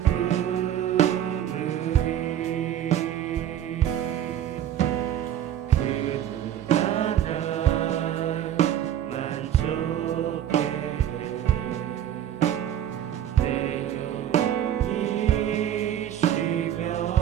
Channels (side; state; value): left; quieter; 10.7 dB